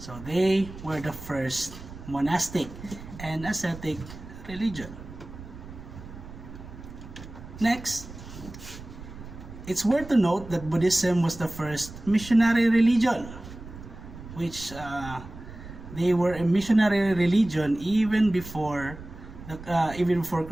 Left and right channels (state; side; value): noise; right; rumble, 14 dB below the sound